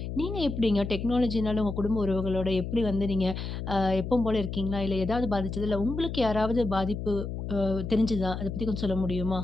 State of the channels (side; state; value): left; noise; hum, 6 dB below the sound